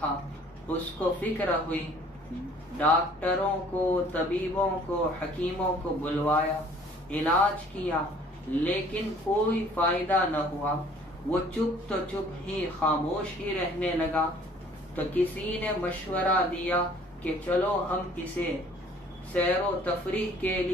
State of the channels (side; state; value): both; normal; correlation 0.55